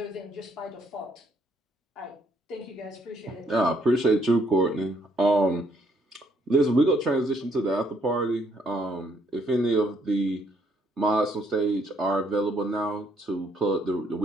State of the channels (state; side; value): normal; both; correlation 0.69